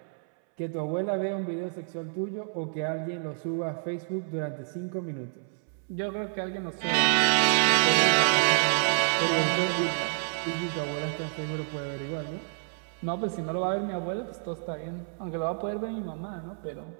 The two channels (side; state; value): left; silent; 59 dB below the other